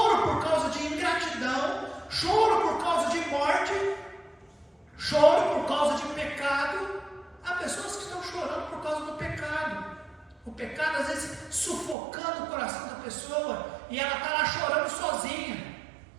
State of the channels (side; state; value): left; drops out; at 12.0 s